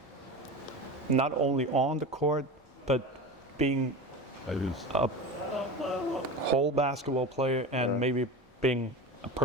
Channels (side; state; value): both; normal; correlation 0.28